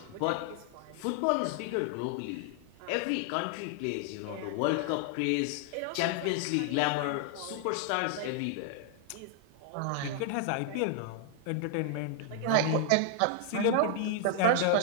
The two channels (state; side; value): different; both; correlation 0.00